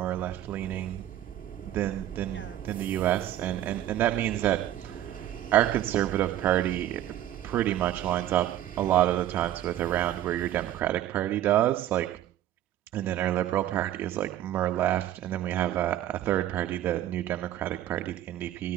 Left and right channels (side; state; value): left; quieter; 12.5 dB